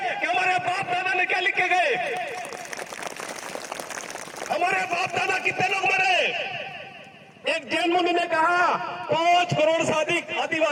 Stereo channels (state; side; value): identical; both; correlation 1.00